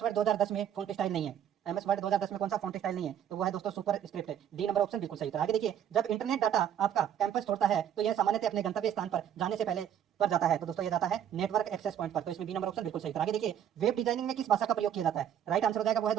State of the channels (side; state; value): left; quieter; 9.7 dB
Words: वर्ड 2010 में फॉन्ट स्टाइल नहीं है? MS वर्ड 2010 में कौन सा फॉन्ट स्टाइल नहीं है? तो वो है दोस्तों सुपर स्क्रिप्ट है, डी नंबर ऑप्शन बिल्कुल सही था। आगे देखिए जब इंटरनेट डाटा आपका कैंपस छोड़ता है तो यह सामान्यतः अपने गंतव्य स्थान पर जाने से पहले पर जाता है। तो दोस्तों ये जाता है नेटवर्क एक्सेस पॉइंट पर। तो इसमें बी नंबर ऑप्शन बिल्कुल सही था। आगे देखिए वेब डिजाइनिंग में किस भाषा का प्रयोग किया जाता है? राइट आंसर हो जाएगा वो है